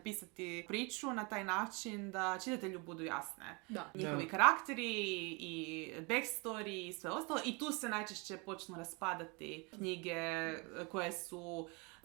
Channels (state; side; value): quieter; left; 29.8 dB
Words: priču na taj način da čitatelju budu jasne. Njihovi karakteri i backstory i sve ostalo, i tu se najčešće počnu raspadati knjige koje su